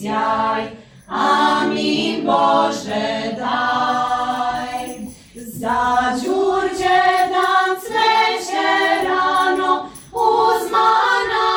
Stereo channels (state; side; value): identical; both; correlation 1.00